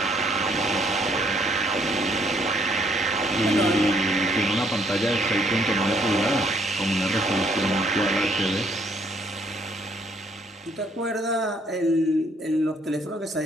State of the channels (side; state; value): both; normal; correlation 0.67